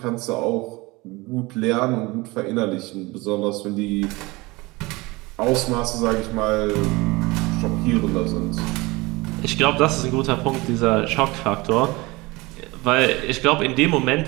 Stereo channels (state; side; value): quieter; left; 22.9 dB